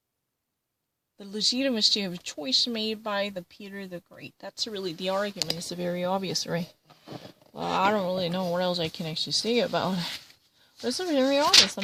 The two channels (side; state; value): both; identical; correlation 1.00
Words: the legitimacy of a choice made by the Peter the Great. That's really the argument. It's very obvious, right? Well, I don't really know what else I can actually say about it. But it's very obvious. I'm